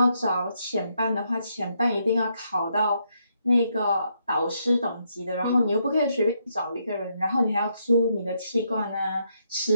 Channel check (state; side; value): inverted; both; correlation -0.77